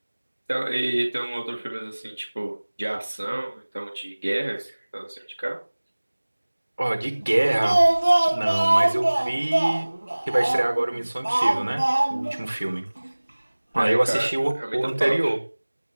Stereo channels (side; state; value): both; inverted; correlation -1.00